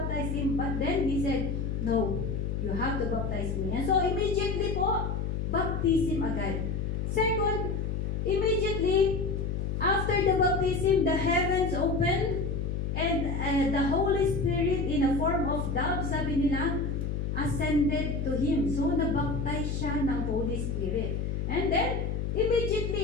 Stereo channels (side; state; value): left; noise; hum, 1 dB below the sound